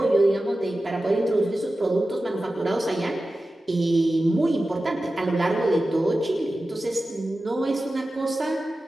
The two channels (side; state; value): both; normal; correlation 0.94